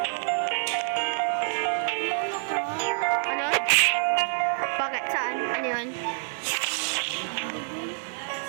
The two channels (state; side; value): silent; left; 56 dB below the other